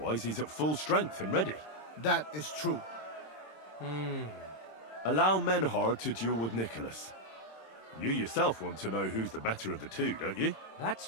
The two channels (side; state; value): right; late; 26 ms